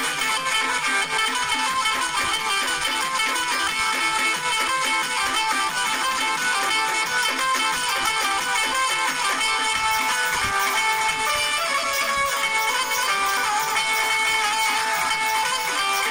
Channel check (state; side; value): identical; both; correlation 1.00